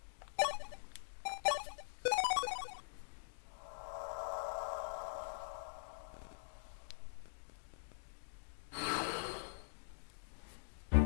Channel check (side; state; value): right; silent; digital silence